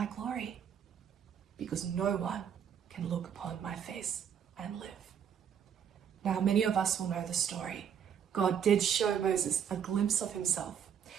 glory because no one can look upon my face and live. Now, many of us will know the story. God did show Moses a glimpse of himself.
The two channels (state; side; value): quieter; left; 8.3 dB